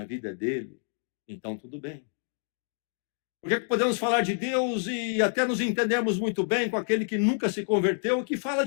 vida é dele, então tudo bem. Porque podemos falar de Deus e até nos entendermos muito bem com aquele que nunca se converteu e que fala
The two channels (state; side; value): silent; right; 59 dB below the other